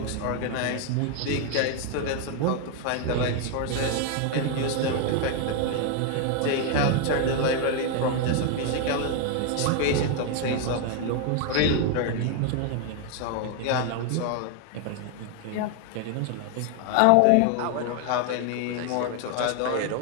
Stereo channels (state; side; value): different; both; correlation 0.01